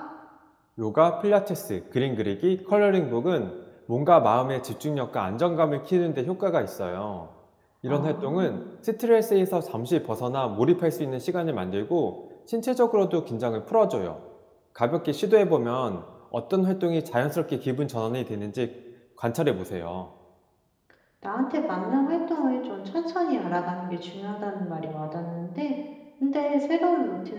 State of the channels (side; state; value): both; identical; correlation 1.00